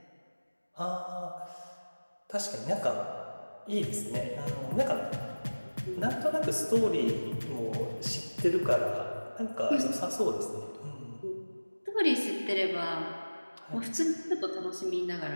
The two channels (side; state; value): both; inverted; correlation -1.00